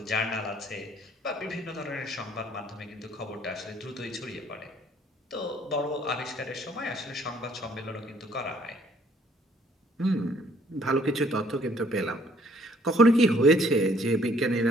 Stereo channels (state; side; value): normal; both; correlation 0.61